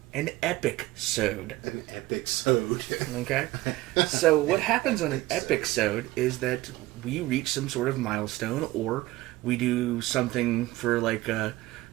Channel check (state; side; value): quieter; left; 18.1 dB